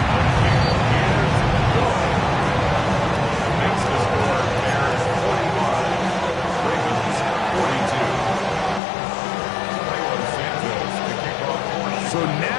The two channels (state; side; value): drops out; right; at 8.8 s